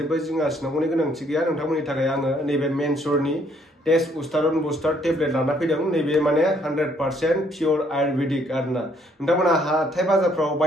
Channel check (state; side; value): normal; both; correlation 0.67